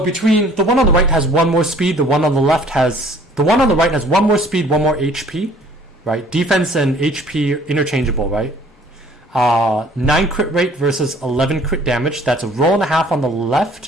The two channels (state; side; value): normal; both; correlation 0.55